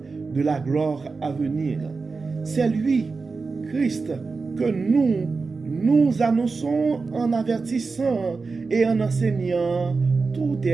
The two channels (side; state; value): left; quieter; 4.3 dB